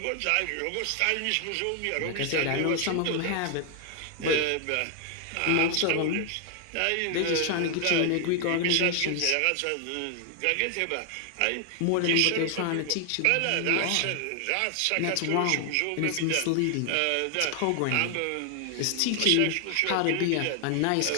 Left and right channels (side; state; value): both; different; correlation 0.00